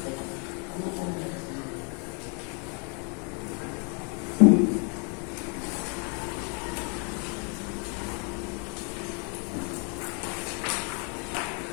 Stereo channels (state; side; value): quieter; right; 36.5 dB